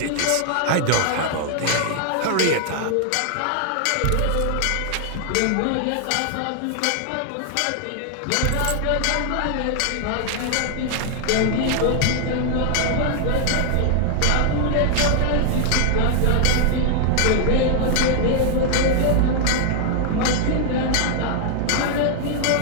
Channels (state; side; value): different; both; correlation 0.00